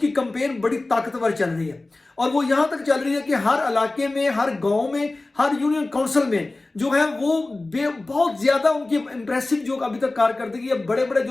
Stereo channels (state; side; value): quieter; right; 3.1 dB